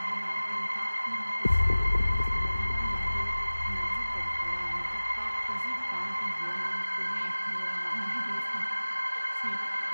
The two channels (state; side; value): inverted; both; correlation -0.99